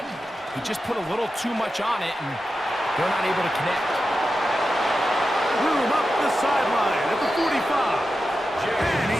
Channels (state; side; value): normal; both; correlation 0.91